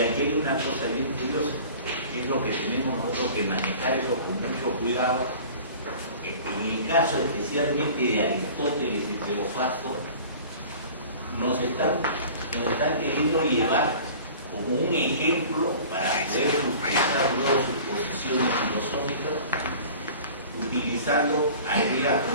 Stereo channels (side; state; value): both; inverted; correlation -0.43